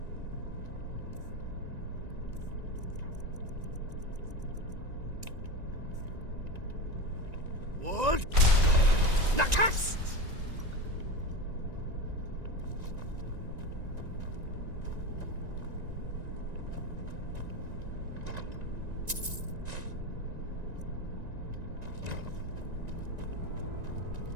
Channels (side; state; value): left; late; 1.9 ms